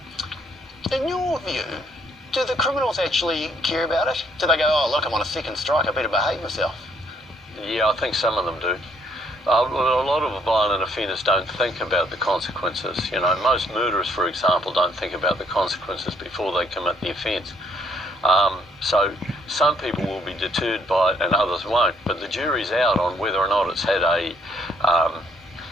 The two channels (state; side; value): normal; both; correlation 0.68